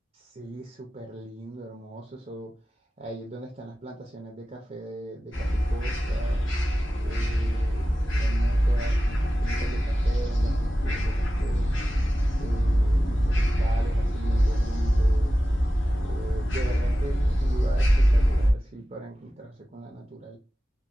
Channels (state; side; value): normal; both; correlation 0.95